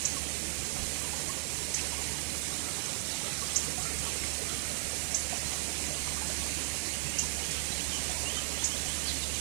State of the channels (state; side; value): silent; left; digital silence